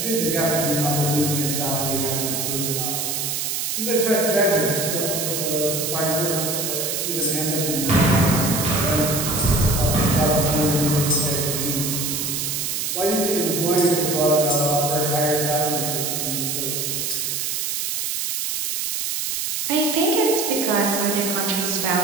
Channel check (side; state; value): right; noise; hiss, 1 dB below the sound